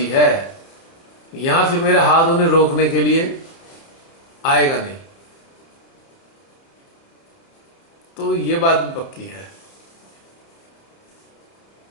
है। यहां फिर मेरा हाथ उन्हें रोकने के लिए आएगा नहीं। तो ये बात भी पक्की है।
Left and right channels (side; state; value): right; late; 30 ms